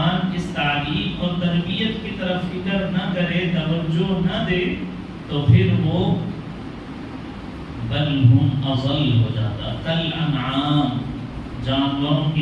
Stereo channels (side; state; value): both; identical; correlation 1.00